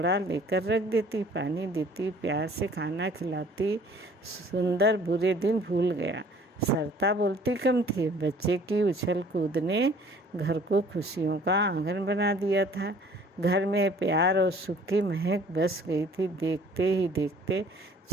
लेकर रख देती, पानी देती, प्यार से खाना खिलाती। सुंदर बुरे दिन भूल गया। सरिता बोलती कम थी। बच्चे की उछल कूद ने घर को खुशियों का आंगन बना दिया था। घर में प्यार और सुख की महक बस गई थी। देखते ही देखते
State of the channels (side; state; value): both; normal; correlation 0.54